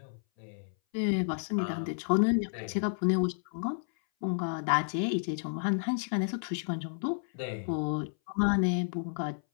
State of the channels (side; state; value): right; silent; 57 dB below the other